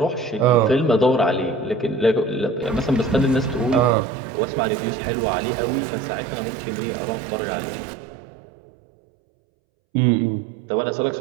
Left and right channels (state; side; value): drops out; left; at 4.0 s